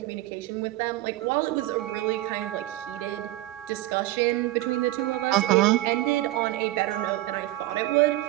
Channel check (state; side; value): quieter; left; 16.6 dB